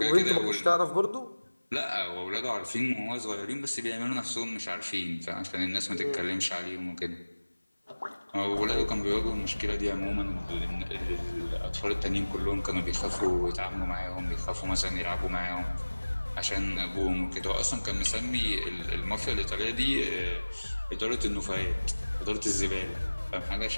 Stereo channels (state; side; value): inverted; both; correlation -1.00